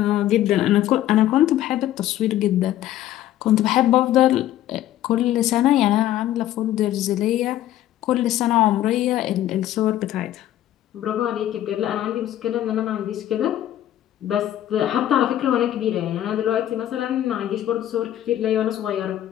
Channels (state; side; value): quieter; right; 12.8 dB